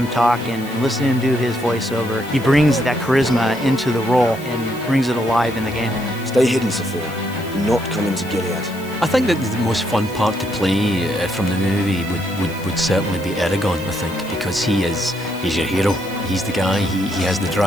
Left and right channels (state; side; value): noise; left; hiss, 19 dB below the sound